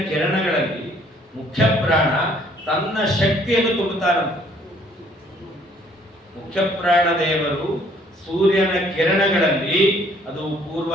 ಕಿರಣಗಳಲ್ಲಿ ಮುಖ್ಯ ಪ್ರಾಣ ತನ್ನ ಶಕ್ತಿಯನ್ನು ತುಂಬುತ್ತಾರಂತೆ. ಮುಖ್ಯ ಪ್ರಾಣ ದೇವರು ಸೂರ್ಯನ ಕಿರಣಗಳಲ್ಲಿ, ಅದು ಪೂರ್ವ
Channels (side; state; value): both; normal; correlation 0.61